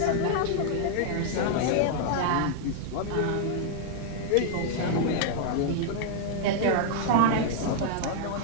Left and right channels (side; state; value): both; different; correlation 0.00